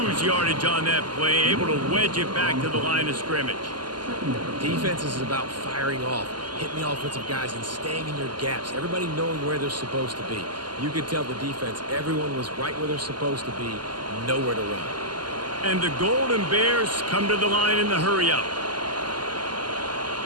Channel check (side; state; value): left; late; 0.71 ms